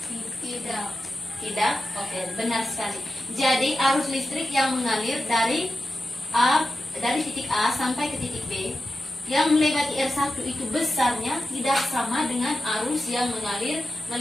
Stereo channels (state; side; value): normal; both; correlation 0.91